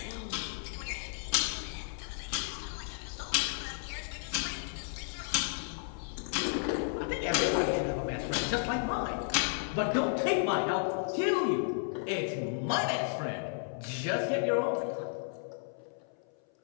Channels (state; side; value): silent; right; 56 dB below the other